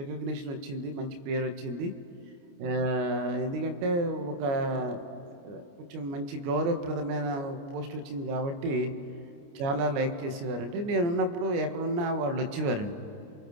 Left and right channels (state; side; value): late; left; 29 ms